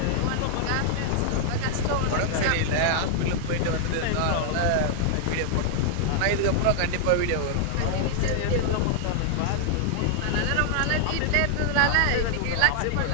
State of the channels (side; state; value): both; different; correlation 0.00